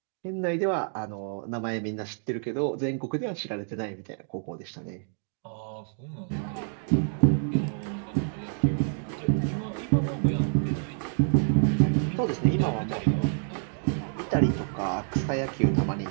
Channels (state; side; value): silent; left; 59 dB below the other